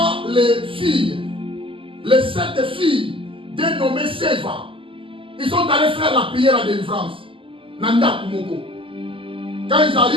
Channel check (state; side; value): late; left; 0.25 ms